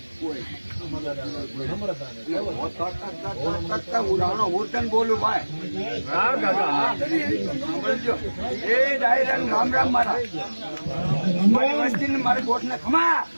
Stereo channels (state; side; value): inverted; both; correlation -1.00